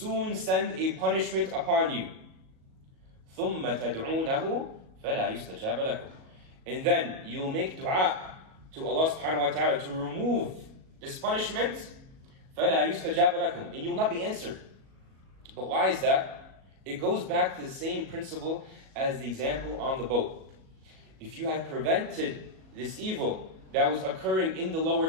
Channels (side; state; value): left; late; 37 ms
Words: send a punishment upon you. ثُمَّ تَدْعُونَهُ فَلَا يُسْتَجَابَ لَكُمْ, and then you'll make dua to Allah subhanahu wa ta'ala to remove this punishment. فَلَا يُسْتَجَابَ لَكُمْ, and you will not be answered. But why is that? It goes back to the same principle as the example on the boat. If you had prevented this evil that was occurring in the